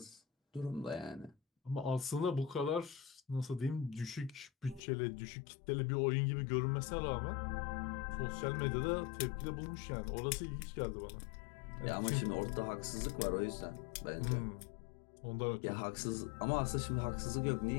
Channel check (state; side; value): drops out; right; at 4.8 s